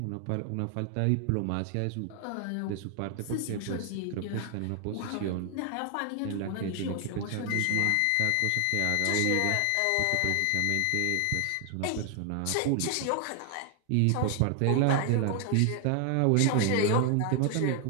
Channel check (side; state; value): both; different; correlation 0.00